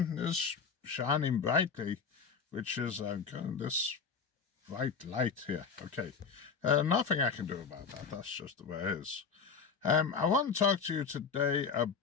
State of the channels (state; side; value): quieter; right; 5.6 dB